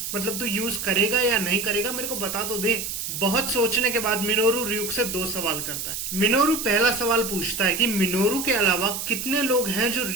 मतलब तू यूज करेगा या नहीं करेगा मेरे को बता तो दे। बहुत सोचने के बाद मिनोरू ryuk से 2 सवाल करता है। मिनोरू पहला सवाल पूछता है कि मिनोरू के अलावा कितने लोग हैं जो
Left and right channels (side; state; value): right; noise; hiss, 5 dB below the sound